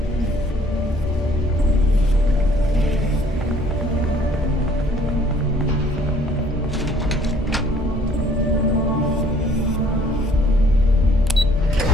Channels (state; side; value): normal; both; correlation 0.59